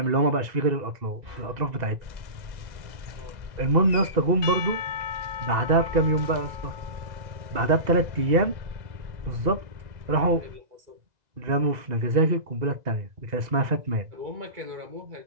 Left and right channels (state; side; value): late; left; 2.0 ms